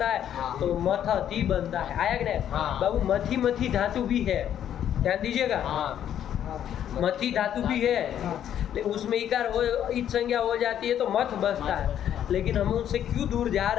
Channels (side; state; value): right; quieter; 10.2 dB